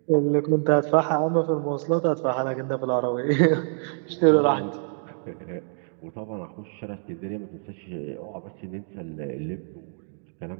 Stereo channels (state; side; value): silent; left; 61 dB below the other